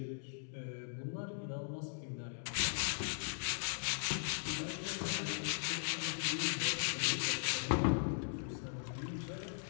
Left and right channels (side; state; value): right; silent; digital silence